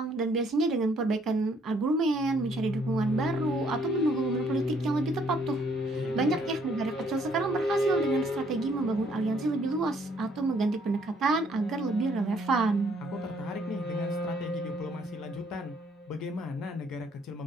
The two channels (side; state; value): both; normal; correlation 0.66